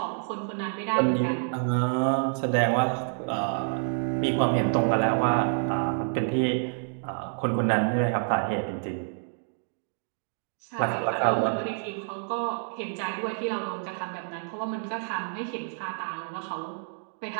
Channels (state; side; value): silent; left; digital silence